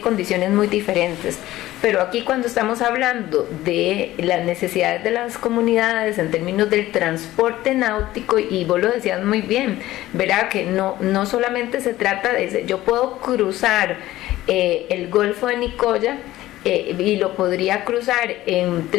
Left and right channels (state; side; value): quieter; right; 15.7 dB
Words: condiciones muy diferentes. Pero aquí, cuando estamos hablando de las necesidades de las comunidades en términos del transporte náutico, y vos lo decías muy bien, ¿verdad?, que no solamente se trata de... Yo puedo cruzar el Golfo de Nicoya y lo podría cruzar en